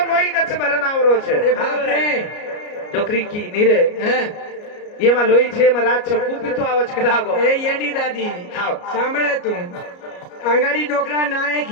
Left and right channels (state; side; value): late; right; 33 ms